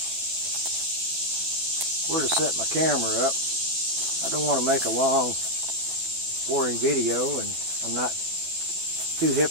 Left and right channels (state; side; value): late; left; 12 ms